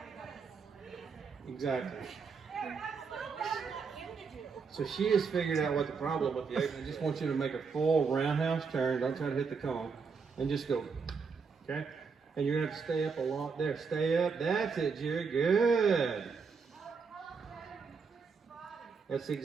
Exactly. So she has figured out what the problem with the apron. I just want you to make a full roundhouse turn. Don't try to hit the cone. And just go. Okay? And you're going to have to stay up a lot there. Stay up. That's it, Jerry. Good. That's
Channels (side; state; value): left; quieter; 5.3 dB